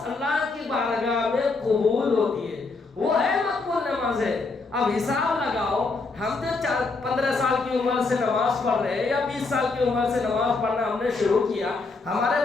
اللہ کی بارگاہ میں قبول ہوتی ہے، وہ ہے مقبول نماز ہے۔ اب حساب لگاؤ، ہم تو 15 سال کی عمر سے نماز پڑھ رہے ہیں یا 20 سال کی عمر سے نماز پڑھنا ہم نے شروع کیا، ہمارے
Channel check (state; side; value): quieter; right; 3.9 dB